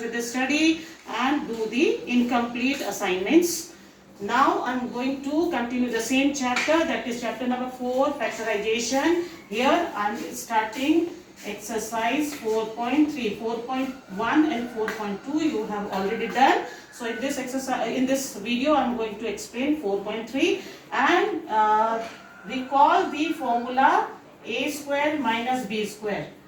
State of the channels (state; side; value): identical; both; correlation 1.00